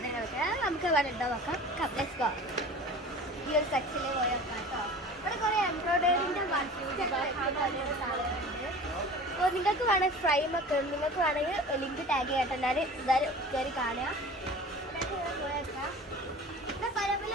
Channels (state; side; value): normal; both; correlation 0.39